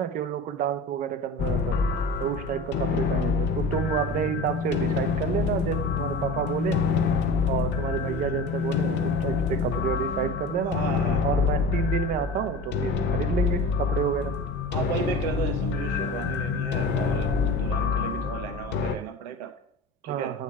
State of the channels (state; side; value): normal; both; correlation 0.34